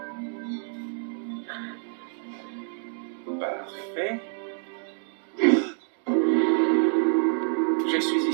Parfait. Je suis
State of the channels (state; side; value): silent; left; 60 dB below the other